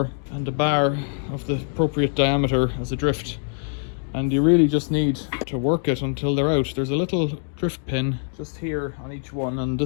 and a bar of the appropriate diameter as a drift. And you really just need to work it until they're out. There's a little drift pin just here on each one, and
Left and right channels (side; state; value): right; silent; digital silence